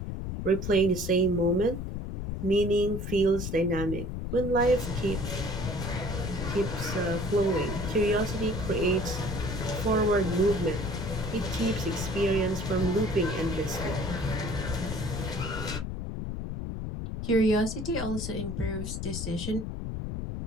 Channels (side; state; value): left; noise; rumble, 5 dB below the sound